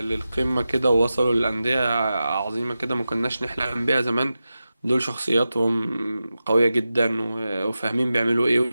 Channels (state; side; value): inverted; both; correlation -0.93